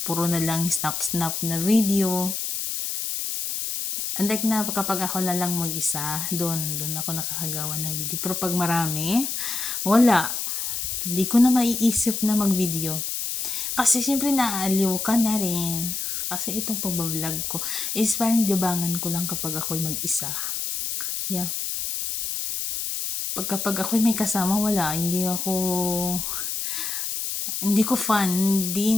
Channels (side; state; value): left; noise; hiss, 3 dB below the sound